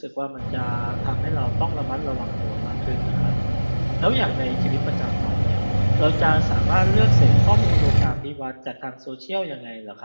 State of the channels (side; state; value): both; inverted; correlation -1.00